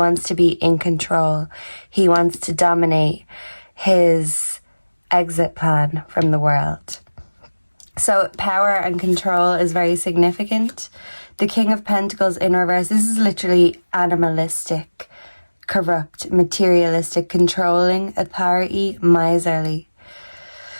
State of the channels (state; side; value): inverted; both; correlation -1.00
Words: to be in control. He wants to dominate his exit plan from the world. So power and control is very significant. The King of Pentacles in reverse, this is literally animalistic, corrupt, materialistic, controlling, authority, miserly.